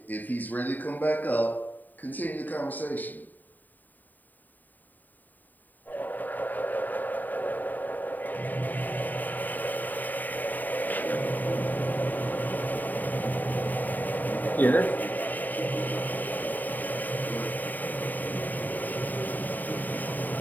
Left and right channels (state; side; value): late; right; 0.086 ms